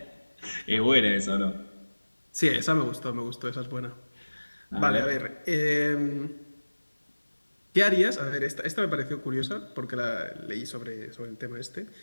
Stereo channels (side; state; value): both; inverted; correlation -1.00